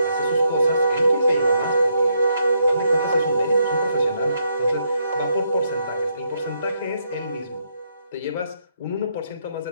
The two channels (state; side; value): inverted; both; correlation -0.76